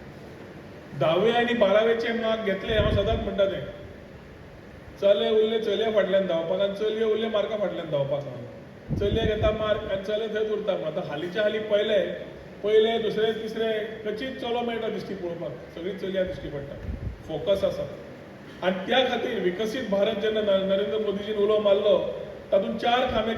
10वे आनी 12वेचे मार्क घेतले हांव सदांच म्हणटा तें चले उरले चलये फाटल्यान धांवपाक आनी चलये उरले मार्का फाटल्यान धांवपाक चलये घेता मार्क आनी चले थंयच उरता. आतां हालींच्या हालीं पयले दुसरे तिसरे खंयचीच चलो मेळटा दिश्टी पळोवपाक सगळीं चलयां दिश्टी पडटा. फोकस आसा आनी त्या खातीर विकसीत भारत जेन्ना नरेंद्र मोदीजीन उलो मारलो तातूंत 4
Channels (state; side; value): identical; both; correlation 1.00